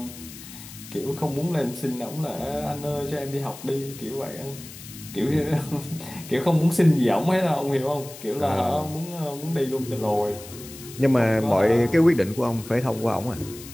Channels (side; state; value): left; noise; hiss, 15 dB below the sound